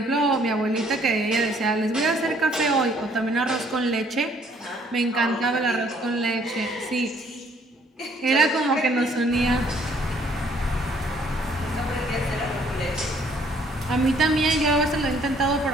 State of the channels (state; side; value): normal; both; correlation 0.63